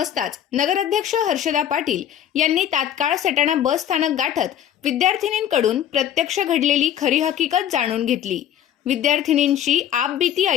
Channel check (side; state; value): right; quieter; 10.4 dB